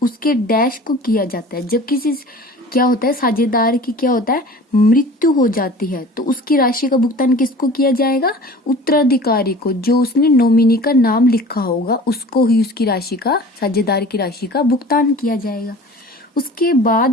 उसके डैश को किया जाता है। जब किसी क्या होता है, साझेदार की क्या होता है, मृत्यु हो जाती है, तो उसकी राशि का भुगतान किसको किया जाएगा, उत्तराधिकारी को, जो उसने नॉमिनी का नाम लिखा होगा उसको ही उसकी राशि का, साझेदार की राशि का भुगतान किया जाएगा। उसके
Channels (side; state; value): both; normal; correlation 0.42